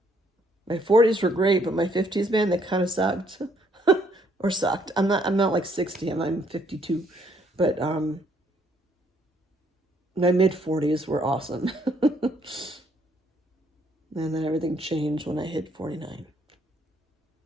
My 40s were great, but my 50s, man, they kind of sucked. Or sucked. I'm not like 60, I'm 52. But my mid-40s were awesome. And then everything changed when I hit 49.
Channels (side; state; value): both; normal; correlation 0.68